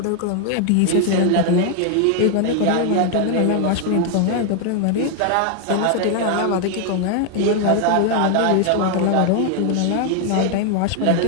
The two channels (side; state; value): both; different; correlation 0.00